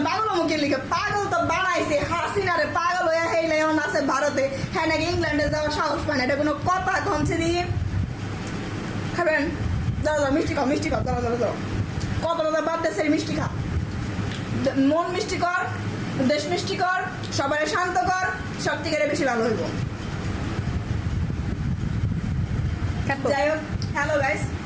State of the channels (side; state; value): both; identical; correlation 1.00